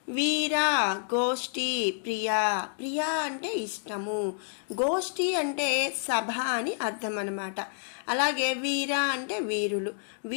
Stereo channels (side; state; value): right; silent; digital silence